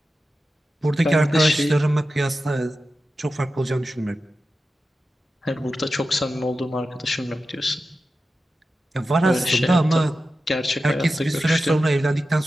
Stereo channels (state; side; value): normal; both; correlation 0.92